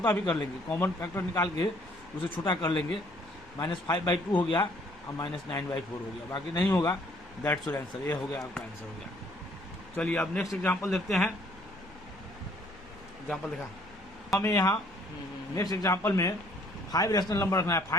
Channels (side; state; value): both; normal; correlation 0.61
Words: भी कर लेंगे, कॉमन फैक्टर निकाल के उसे छोटा कर लेंगे। -5/2 हो गया और -9/4 हो गया, बाकी नहीं होगा। दैट्स योर आंसर, ये हो गया आपका आंसर हो गया। चलिए अब नेक्स्ट एग्जांपल देखते हैं। एग्जांपल देखा हमें यहाँ नेक्स्ट एग्जांपल में 5 रैशनल नंबर रखना है।